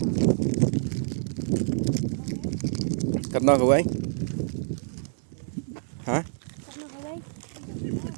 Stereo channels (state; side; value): silent; left; digital silence